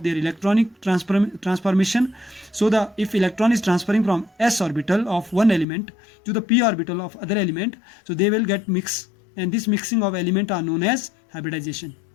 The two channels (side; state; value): right; drops out; at 5.7 s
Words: their electronic transformation. So if electron is transferring from s orbital of one element to the p orbital of other element, so they will get mixed, and this mixing of element are known as hybridization.